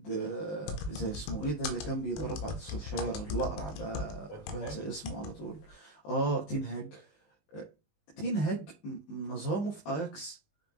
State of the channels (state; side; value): late; right; 19 ms